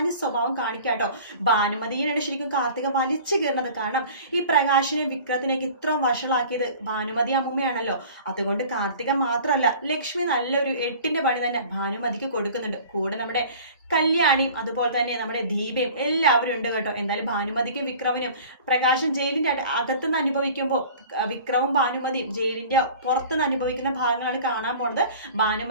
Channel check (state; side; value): inverted; both; correlation -0.44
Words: സ്വഭാവം കാണിക്കാട്ടോ. ഭാനുമതിയാണ് ശരിക്കും കാർത്തിക വലിച്ചു കയറുന്നത്. കാരണം ഈ പ്രകാശിനെ വിക്രത്തിനേക്ക് ഇത്രയും വഷളാക്കിയത് ഭാനുമതി അമ്മൂമ്മയാണല്ലോ. അതുകൊണ്ട് കാർത്തിക മാത്രമല്ല, ലക്ഷ്മി നല്ലൊരു 8ന്റെ പണി തന്നെ ഭാനുമതിക്ക് കൊടുക്കുന്നുണ്ട്. കൂടെ നമ്മുടെ കല്യാണിയും അതുപോലെ തന്നെ നമ്മുടെ ദീപയും എല്ലാവരും ഉണ്ട് കേട്ടോ. എന്തായാലും ഭാനുമതിക്കും വിക്രമിനും പ്രകാശൻ ജയിലിന്റെ അകത്തുനിന്ന് അനുഭവിക്കുമ്പോൾ വിക്രമും ഭാനുമതിയും ജയിലിന്റെ പുറത്തുനിന്ന് അനുഭവിക്കുന്ന ഭാഗങ്ങളാണ് കാണാൻ പോണത്.